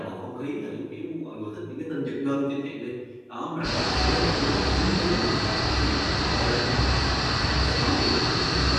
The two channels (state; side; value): identical; both; correlation 1.00